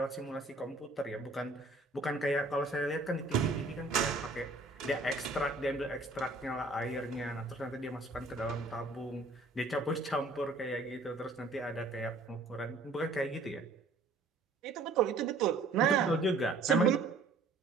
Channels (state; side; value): quieter; left; 3.2 dB